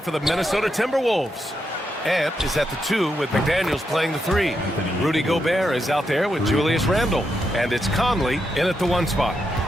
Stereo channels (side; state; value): both; normal; correlation 0.83